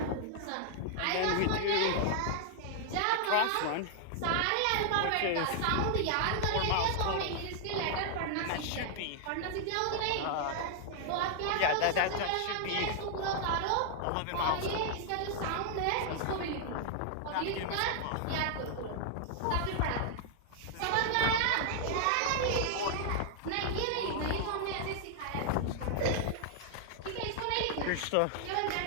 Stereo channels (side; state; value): both; different; correlation -0.01